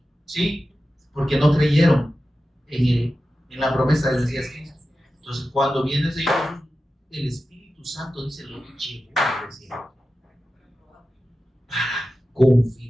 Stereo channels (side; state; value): both; normal; correlation 0.93